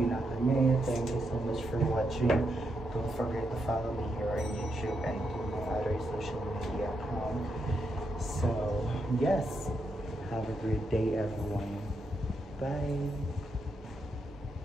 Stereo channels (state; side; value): normal; both; correlation 0.82